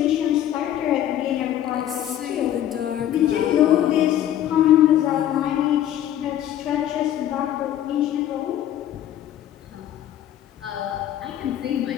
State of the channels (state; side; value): quieter; right; 11.6 dB